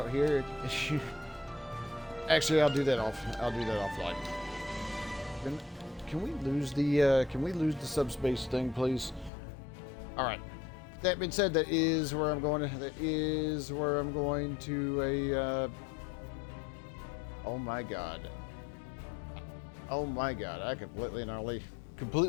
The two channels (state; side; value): drops out; right; at 9.3 s